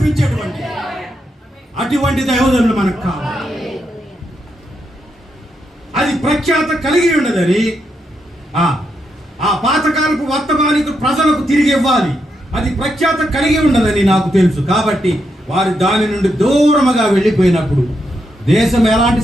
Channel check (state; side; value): normal; both; correlation 0.82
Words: అటువంటి దైవజనులు మనకు కావాలి. అది ప్రఖ్యాత కలిగి ఉండదని ఆ పాతకాలపు వర్తమానికు ప్రజలకు తిరిగి ఇవ్వాలి. అది ప్రఖ్యాత కలిగి ఉండదని నాకు తెలుసు. కాబట్టి వారు దాని నుండి దూరముగా వెళ్ళిపోయినప్పుడు దేశం ఎలాంటి